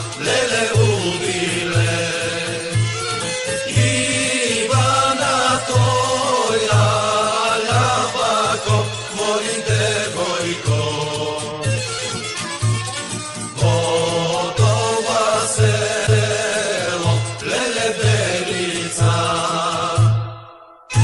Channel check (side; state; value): both; identical; correlation 1.00